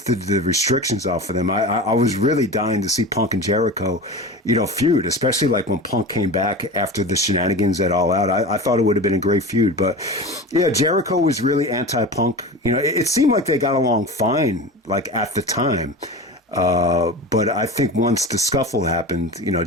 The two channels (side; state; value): both; normal; correlation 0.30